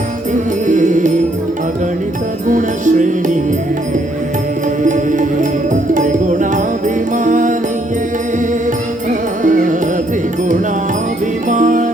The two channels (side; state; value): both; normal; correlation 0.70